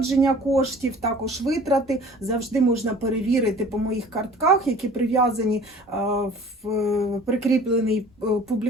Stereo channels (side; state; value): both; normal; correlation 0.47